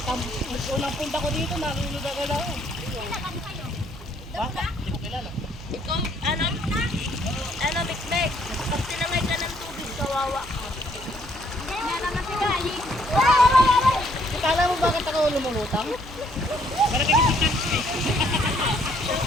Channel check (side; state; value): right; noise; hum, 17 dB below the sound